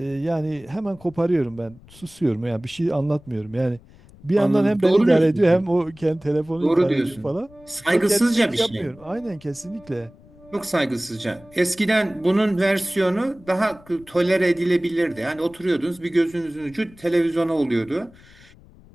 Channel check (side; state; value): left; noise; rumble, 24 dB below the sound